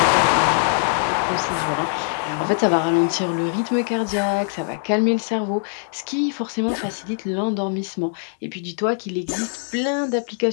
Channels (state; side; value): silent; right; digital silence